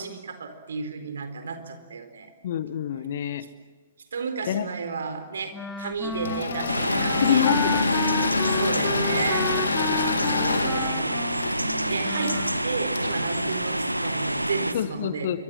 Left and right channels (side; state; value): both; inverted; correlation -0.67